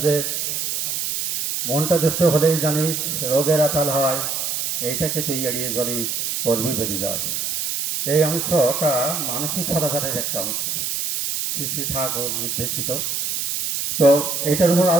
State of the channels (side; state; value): right; noise; hiss, 2 dB below the sound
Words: যে মনটা দুষ্ট হলেই জানিস রোগের আতাল হয়, এইটাকে তুই এড়িয়ে চলিস কর্মী বেঁধে যায়। এই অংশটা মানসিক সদাচারের একটা অংশ, শ্রী শ্রী ঠাকুর নির্দেশিত। তো এইটার উপর